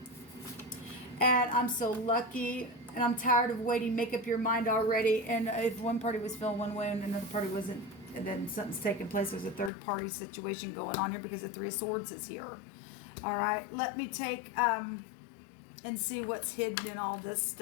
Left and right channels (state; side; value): drops out; right; at 9.7 s